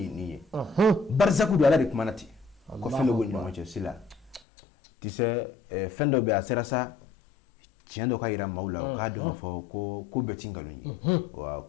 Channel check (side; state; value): right; drops out; at 4.4 s